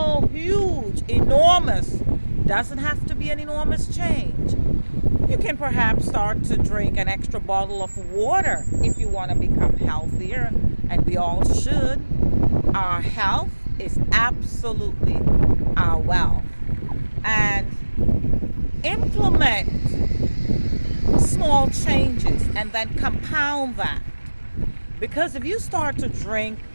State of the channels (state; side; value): inverted; both; correlation -1.00